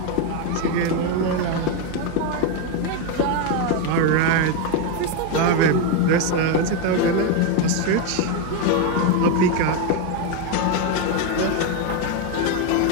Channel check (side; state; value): both; different; correlation 0.02